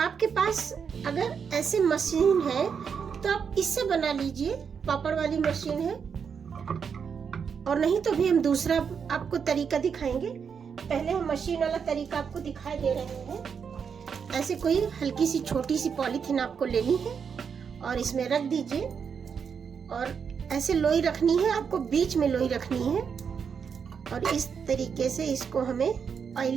पास अगर ऐसे मशीन है तो आप इससे बना लीजिए, पापड़ वाली मशीन है। और नहीं तो भी हम दूसरा आपको तरीका दिखाएंगे। पहले हम मशीन वाला तरीका आपको दिखाई दे रहे हैं। ऐसे कोई हल्की सी छोटी सी पॉलीथीन आपको लेनी है और इसमें रख दीजिए, और ऐसे लोई रखनी है आपको, बीच में लोई रखनी है। और इस तरीके से इसको हमें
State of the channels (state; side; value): quieter; left; 6.6 dB